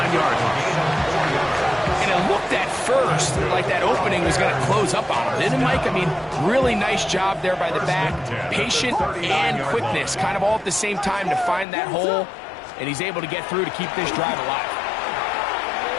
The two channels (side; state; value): right; drops out; at 11.7 s